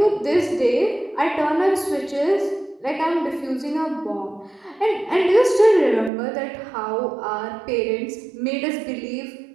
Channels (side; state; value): left; drops out; at 6.1 s